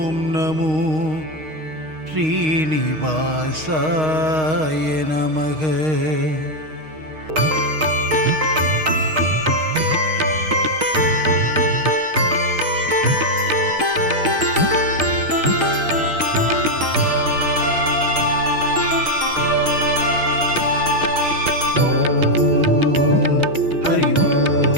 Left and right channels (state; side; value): late; left; 6.4 ms